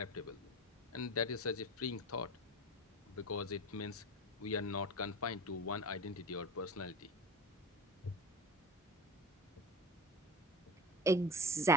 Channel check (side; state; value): both; normal; correlation 0.30